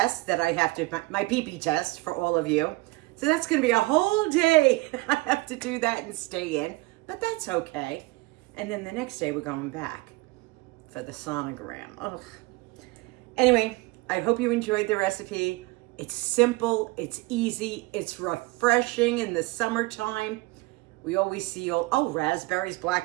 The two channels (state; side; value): quieter; left; 22.3 dB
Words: that I have to, my pee-pee test for all of you. So that's going to be a whole day. I have to do that and stay in, but that's okay. And then the next day we're going back for the sonogram. Ugh. Anyway, I hope you enjoyed the recipe. It's simple, it's easy, it's refreshing in the summertime. We always see raspberries,